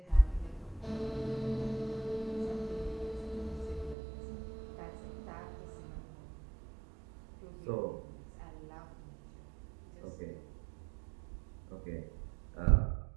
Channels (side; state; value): left; drops out; at 4.0 s